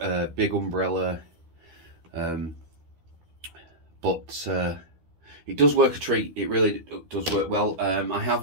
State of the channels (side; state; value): left; late; 12 ms